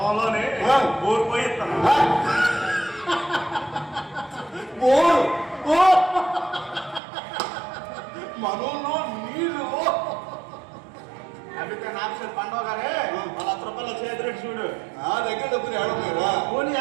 బోర్ పోయి ఇస్తాను. మనలో నీళ్ళు అందుకే నాకు పండుగ గానే ₹1,00,000 చేతిరెడ్డి చూడు. నా దగ్గర డబ్బులు ఏడన్నారా? పోనీ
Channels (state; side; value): drops out; left; at 7.0 s